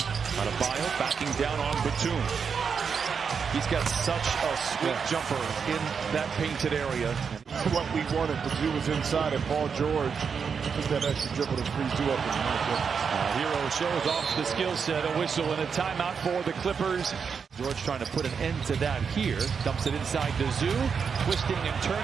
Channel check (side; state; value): left; quieter; 6.2 dB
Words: Adebayo backing down on Batum. He's got such a sweet jumper in that painted area. What we wanted to do was inside, and Paul George took that extra dribble to freeze you up. Hero shows off the skill set. A whistle and a timeout for the Clippers. George trying to put an end to that here. Dumps it inside to Zoo. Twisting and